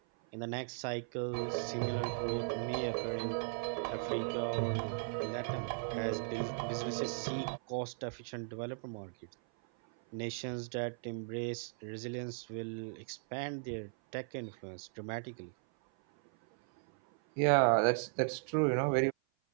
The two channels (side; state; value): left; silent; 53 dB below the other